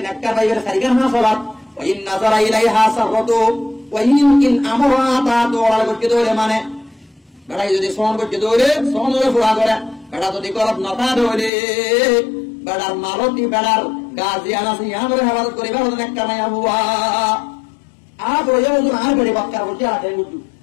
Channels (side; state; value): right; drops out; at 11.5 s